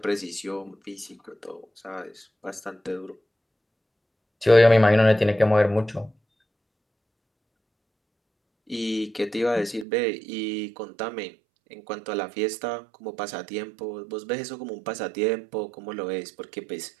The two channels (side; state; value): left; drops out; at 9.9 s